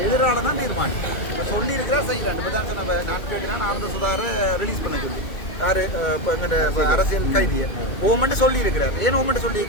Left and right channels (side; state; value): right; late; 2.2 ms